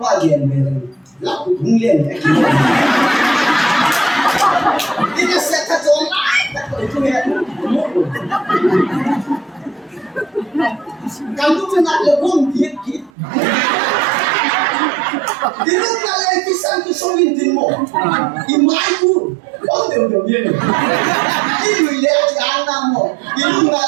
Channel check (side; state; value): left; drops out; at 13.1 s